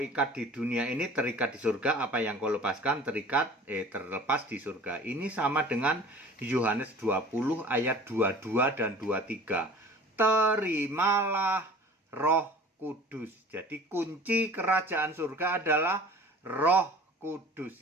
di dunia ini terikat di surga, apa yang kau lepaskan terlepas di surga. Ini sama dengan Yohanes 20 ayat 22 dan 23. Terimalah Roh Kudus. Jadi kunci kerajaan surga adalah Roh Kudus.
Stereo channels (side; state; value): both; normal; correlation 0.44